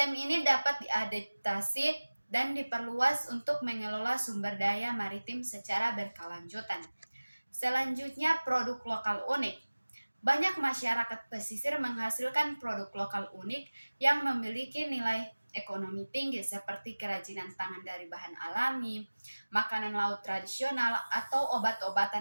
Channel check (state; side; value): inverted; both; correlation -1.00